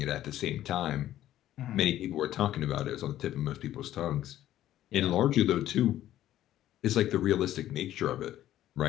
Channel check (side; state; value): right; quieter; 12.9 dB